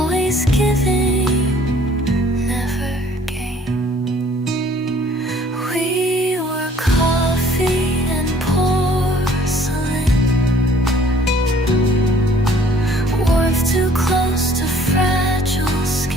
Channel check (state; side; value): normal; both; correlation 0.56